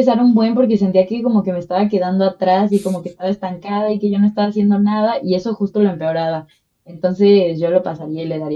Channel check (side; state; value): both; identical; correlation 1.00